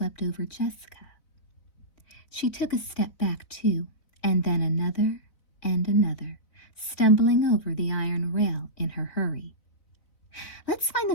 over Jessica. She took a step back too, and then another and another, stumbling over the iron rail in her hurry. "Let's find the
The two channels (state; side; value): late; right; 4.0 ms